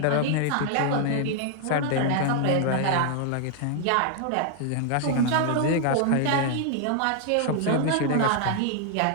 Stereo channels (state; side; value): different; both; correlation 0.00